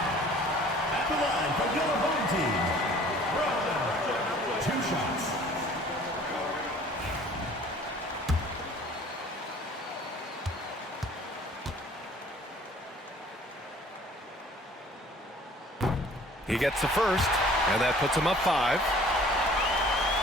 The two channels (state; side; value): normal; both; correlation 0.51